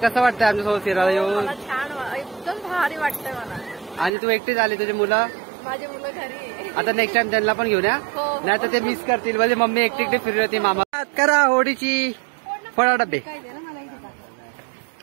वाटतंय आमच्यासोबत फिरायला येऊन? छान, एकदम भारी वाटतंय मला. आणि तू एकटीच आली, तुझी मुलं? माझे मुलं घरी. आता नेक्स्ट टाइम त्यांना पण घेऊन या, नाही तर ते मिस करतील. म्हणजे मम्मी एकटी फिरली होती. मामा करा होळीची फळा डबे.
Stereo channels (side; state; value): left; drops out; at 4.1 s